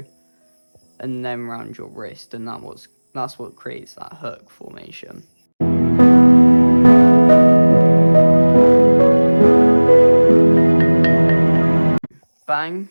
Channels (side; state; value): both; inverted; correlation -1.00